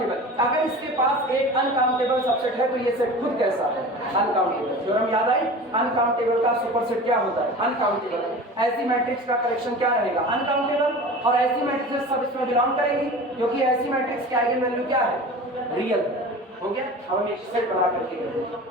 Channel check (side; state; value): both; normal; correlation 0.36